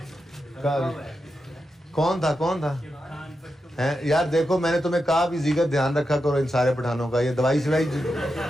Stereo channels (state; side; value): normal; both; correlation 0.88